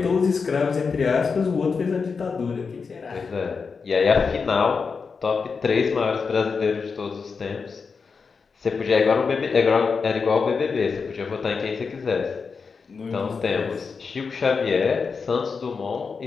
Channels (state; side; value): quieter; right; 5.2 dB